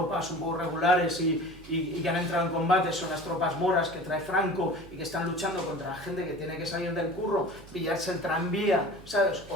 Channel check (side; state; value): right; noise; hum, 19 dB below the sound